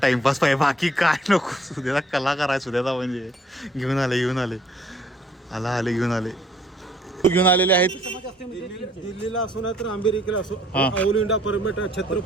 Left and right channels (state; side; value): normal; both; correlation 0.62